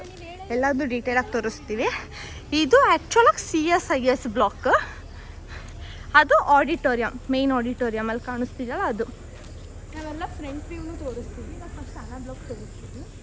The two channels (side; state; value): both; identical; correlation 1.00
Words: ಎಲ್ಲದೂ ಡೀಟೇಲಾಗಿ ತೋರಿಸ್ತೀವಿ. ಇದು ಆ್ಯಕ್ಚುಲಾಗಿ CSIS ಬ್ಲಾಕ್. ಅದು ಆಡಿಟೋರಿಯಂ, ಮೇನ್ ಆಡಿಟೋರಿಯಂ ಅಲ್ಲಿ ಕಾಣಿಸ್ತಿದೆಯಲ್ಲ ಅದು. ನಾವೆಲ್ಲ ಫ್ರಂಟ್ ವ್ಯೂನು ತೋರಿಸ್ತೀವಿ. ನಾವು ಫಸ್ಟ್ ಅನಾ ಬ್ಲಾಕ್ ತೋರಿಸ್ತೀವಿ.